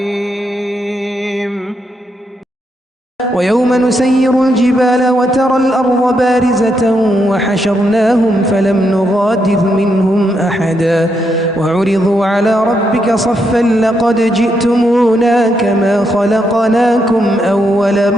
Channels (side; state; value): both; normal; correlation 0.80